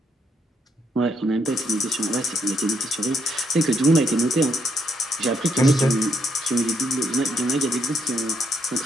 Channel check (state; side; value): normal; both; correlation 0.75